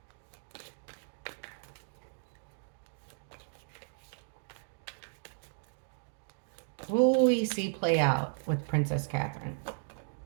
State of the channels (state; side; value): silent; left; digital silence